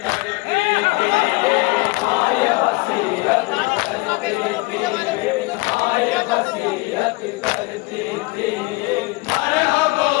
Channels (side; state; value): right; quieter; 24.9 dB